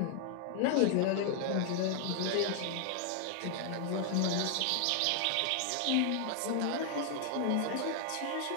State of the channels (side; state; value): both; different; correlation 0.00